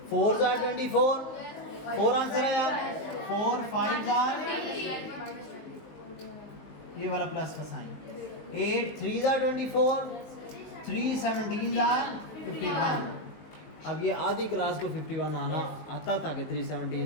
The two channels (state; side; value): late; right; 19 ms